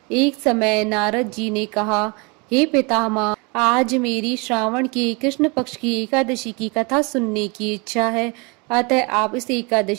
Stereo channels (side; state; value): left; quieter; 29.5 dB